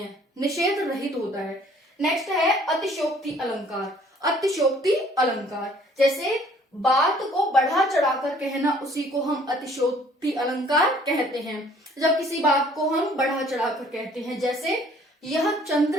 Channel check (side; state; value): both; normal; correlation 0.57